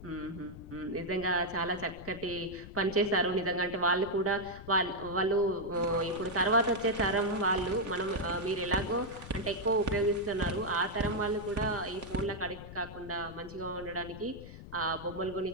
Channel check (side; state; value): left; noise; rumble, 14 dB below the sound